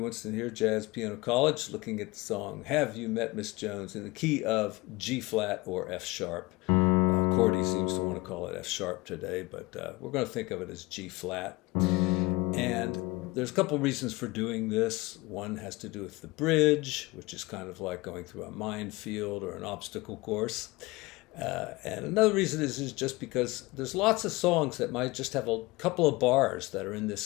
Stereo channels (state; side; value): quieter; right; 22.4 dB